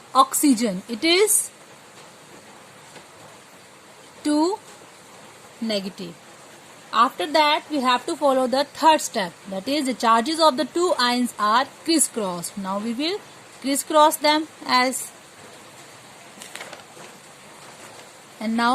oxygen it is 2 negative. After that, we have to follow the third step, that is the charges of the two ions are crisscrossed. Now we will crisscross them as, and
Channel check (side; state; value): both; identical; correlation 1.00